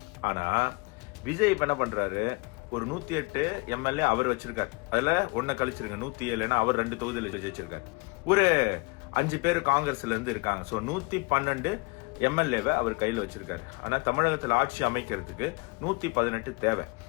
ஆனா விஜய் இப்ப என்ன பண்றாரு, ஒரு 108 எம்எல்ஏ அவர் வச்சிருக்காரு. அதுல ஒன்ன கழிச்சிருங்க 107, அவர் 2 தொகுதியில் ஜெயிச்சிருக்காரு. ஒரு 5 பேர் காங்கிரஸ்ல இருந்து இருக்காங்க. 112 எம்எல்ஏவை அவர் கையில வச்சிருக்காரு. ஆனா தமிழகத்தில் ஆட்சி அமைக்கிறதுக்கு 118 தேவை.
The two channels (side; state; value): right; quieter; 30.2 dB